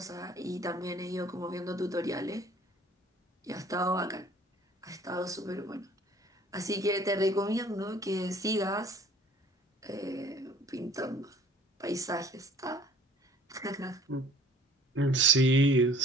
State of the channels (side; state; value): both; normal; correlation 0.52